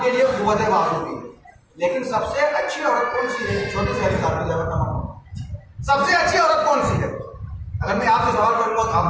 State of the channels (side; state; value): both; identical; correlation 1.00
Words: کے لیے قوت بازو بھی ہے, لیکن سب سے اچھی عورت کون سی ہے؟ چھوٹی سی حدیث آپ کی جواب تمام, سب سے اچھی عورت کون سی ہے؟ اگر میں آپ سے سوال کروں گا تو آپ